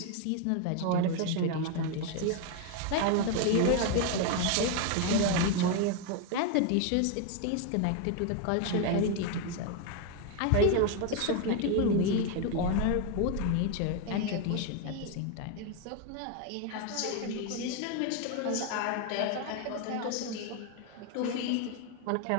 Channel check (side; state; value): both; different; correlation 0.01